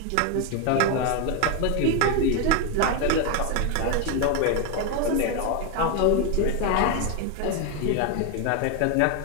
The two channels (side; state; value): both; different; correlation 0.02